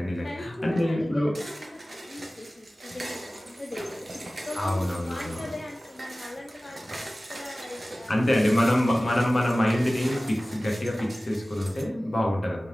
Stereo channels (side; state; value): both; normal; correlation 0.97